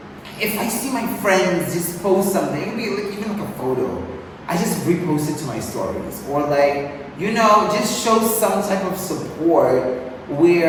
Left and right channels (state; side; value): identical; both; correlation 1.00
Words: if I see my friends just post something, it could be like, even like a photo, I just repost it to my stories. Or like, you know, just show some type of support